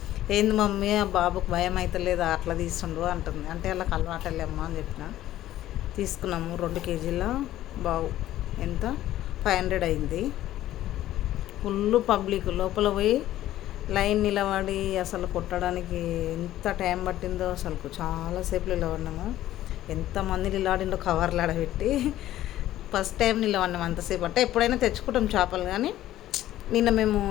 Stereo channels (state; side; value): quieter; right; 13.8 dB